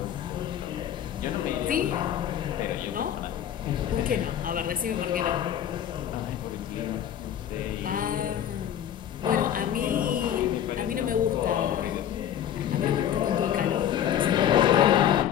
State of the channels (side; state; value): right; quieter; 10.2 dB